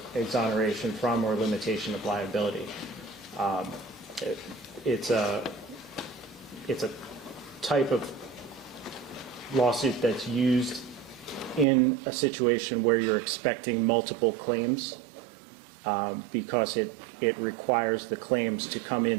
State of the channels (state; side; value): drops out; left; at 11.7 s